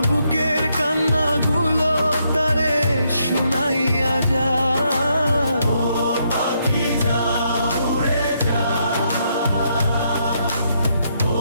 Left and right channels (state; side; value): inverted; both; correlation -0.76